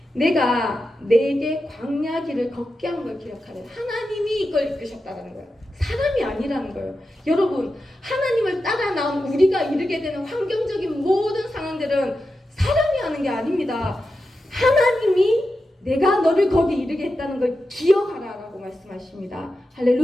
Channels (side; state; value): both; normal; correlation 0.90